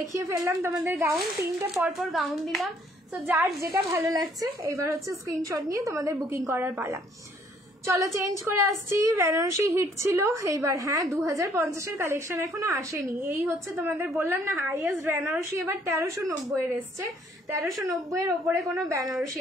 ফেললাম তোমাদের গাউন, 3টে পরপর গাউন দিলাম। তো যার যেটা ভালো লাগছে এইবার হচ্ছে স্ক্রিনশট নিয়ে তোমাদের বুকিং করার পালা। চলো চেঞ্জ করে আসছি। বেনারসি হিট ছিল এইবার, হ্যাঁ 2050-এর কালেকশন এখনো আসেনি। এই হচ্ছে তোমাদের বললাম না হাইয়েস্ট বেনারসি এবার 1390-এর এসছে, 1390-এর ওপরে কোনো বেনারসি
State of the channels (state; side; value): normal; both; correlation 0.63